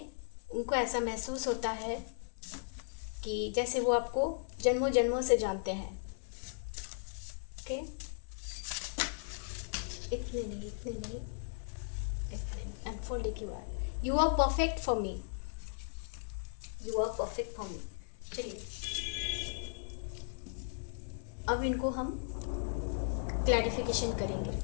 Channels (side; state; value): right; silent; 53 dB below the other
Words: उनको ऐसा महसूस होता है कि जैसे वो आपको जन्मों जन्मों से जानते हैं। ओके, इतने नहीं, इतने नहीं, इतने नहीं। अनफोल्ड एक बार। You are perfect for me, you are perfect for me. चलिए अब इनको हम क्लैरिफिकेशन